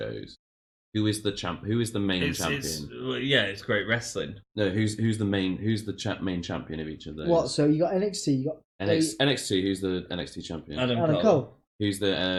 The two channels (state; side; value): identical; both; correlation 1.00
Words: Who is the champ? Who is the main champion? It's great wrestling. No, who's the main main champion of each of those? What? So you got NXT, you got NXT. Who's the NXT champion? Adam Cole. Who's